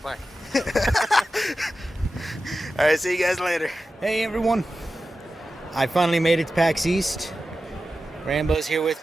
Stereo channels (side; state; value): both; normal; correlation 0.93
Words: All right, see you guys later. Hey, everyone. I finally made it to Pax East. Rambo's here with